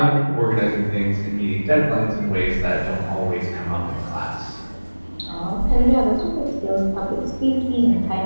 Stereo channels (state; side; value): inverted; both; correlation -1.00